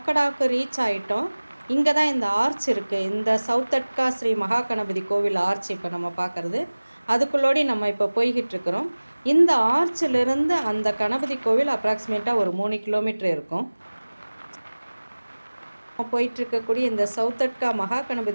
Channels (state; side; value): inverted; both; correlation -1.00